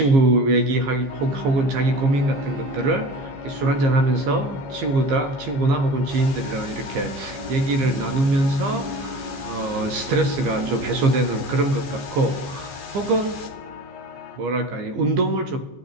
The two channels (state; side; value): late; left; 15 ms